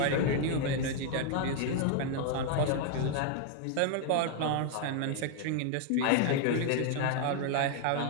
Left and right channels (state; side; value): different; both; correlation 0.00